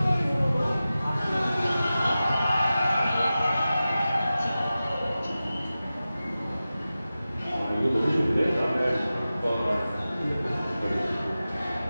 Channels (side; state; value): both; inverted; correlation -0.95